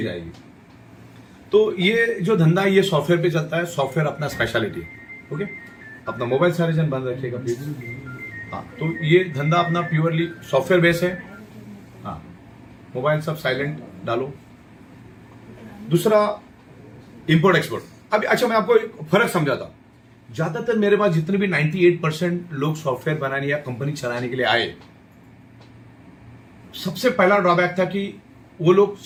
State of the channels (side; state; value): both; identical; correlation 1.00